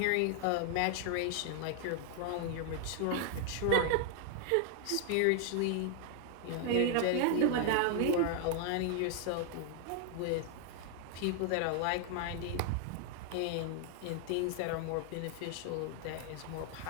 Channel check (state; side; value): different; both; correlation 0.00